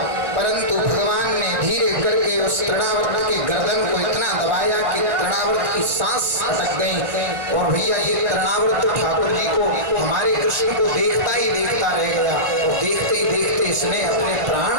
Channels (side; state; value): left; late; 1.5 ms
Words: परंतु भगवान ने धीरे करके उस तृणावृत के गर्दन को इतना दबाया कि तृणावृत की सांस अटक गई। और भैया ये तृणावृत तो ठाकुर जी को, हमारे कृष्ण को देखता ही देखता रह गया, और देखते ही देखते इसने अपने प्राण